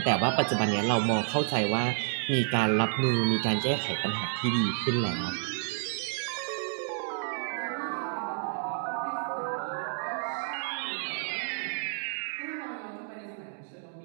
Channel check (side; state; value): left; silent; digital silence